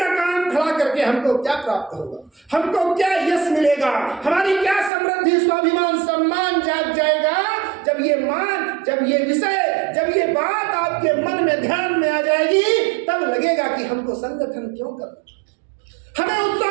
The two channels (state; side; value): drops out; left; at 4.9 s